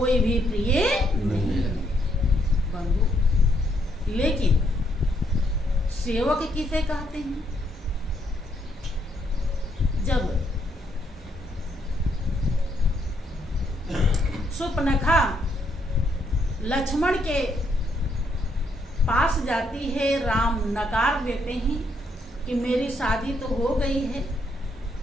भी प्रिय नहीं है बंधु। लेकिन सेवक किसे कहते हैं? जब सुपनखा लक्ष्मण के पास जाती है, राम नकार देते हैं कि मेरी शादी तो हो गई है,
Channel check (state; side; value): normal; both; correlation 0.74